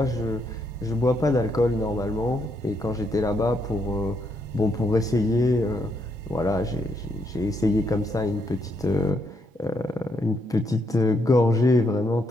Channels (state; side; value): normal; both; correlation 0.76